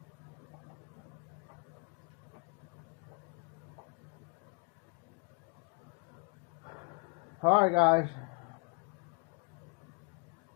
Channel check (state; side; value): quieter; right; 33.0 dB